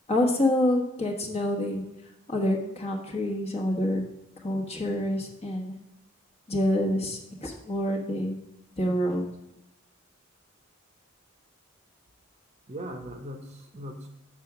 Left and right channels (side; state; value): both; normal; correlation 0.73